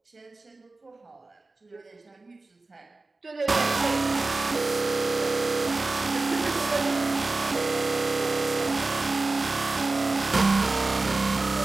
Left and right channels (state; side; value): quieter; left; 3.4 dB